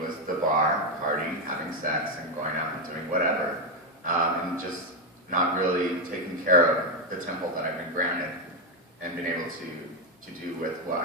the bar, partying, having sex, and going out and doing whatever, and just not really taking care of the temple that I've been granted and been able to do with what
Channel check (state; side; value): normal; both; correlation 0.06